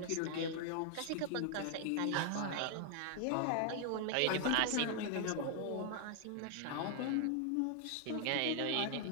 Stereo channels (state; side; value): different; both; correlation 0.00